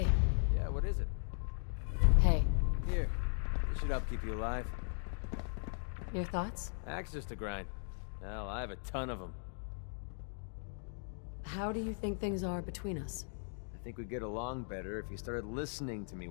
Yeah, what is it? Hey. Here. This should help keep you alive. Your thoughts? Access to grind. Hell, I have a ton of them. How do you think things are between us? I think we'd get along better if you started listening to me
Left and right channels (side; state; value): right; silent; digital silence